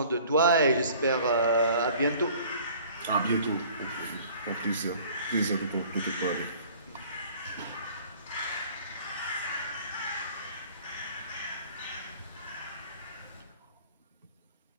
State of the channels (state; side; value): inverted; both; correlation -0.50